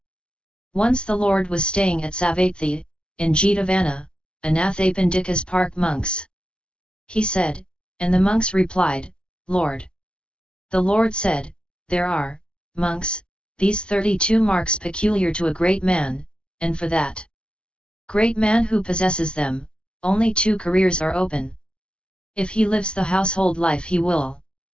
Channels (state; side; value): late; right; 0.056 ms